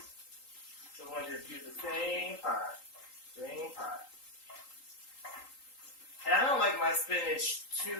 So I'm going to just use the same pot. Same pot. And I don't like my spinach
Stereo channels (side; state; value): right; late; 3.8 ms